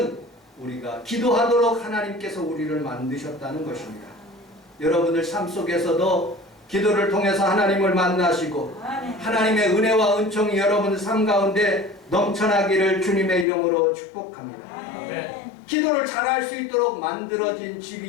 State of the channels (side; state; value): right; drops out; at 13.5 s